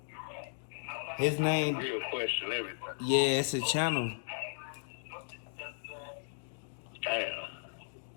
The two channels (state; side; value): silent; right; digital silence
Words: His name... Real Question Everything. Yeah, it's a channel. Damn.